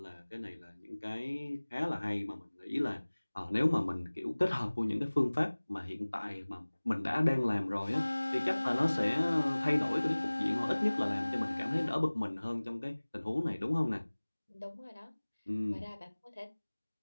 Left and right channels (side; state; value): both; inverted; correlation -1.00